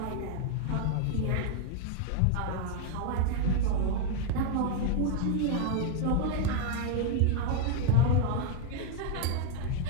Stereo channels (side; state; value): both; different; correlation 0.00